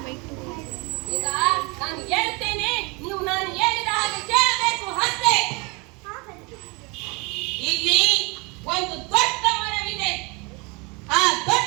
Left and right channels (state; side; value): quieter; left; 28.5 dB